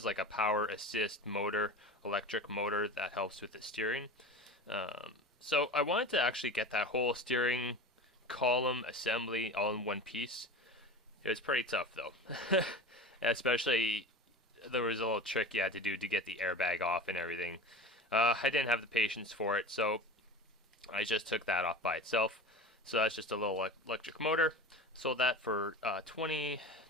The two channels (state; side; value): normal; both; correlation 0.31